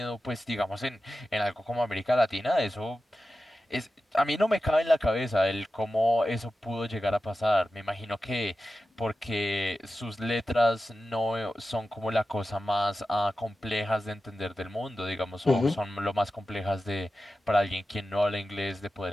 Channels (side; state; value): both; normal; correlation 0.93